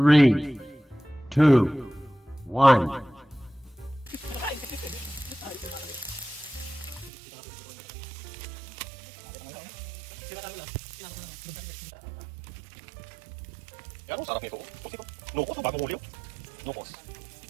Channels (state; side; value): drops out; left; at 7.1 s